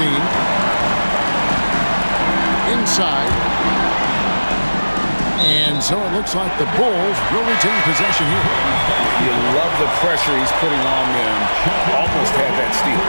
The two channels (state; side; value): inverted; both; correlation -1.00